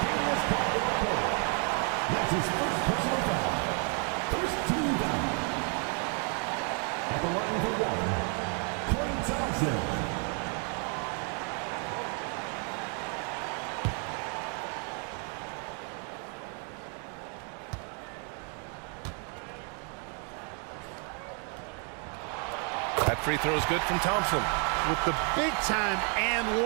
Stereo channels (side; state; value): left; quieter; 39.9 dB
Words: Caldwell Pope. That's his first personal foul. First team foul. At the line for 1, Klay Thompson. That free throw is good from Thompson. With the big time and